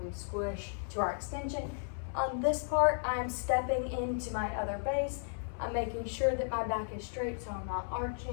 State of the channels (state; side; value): silent; right; 55 dB below the other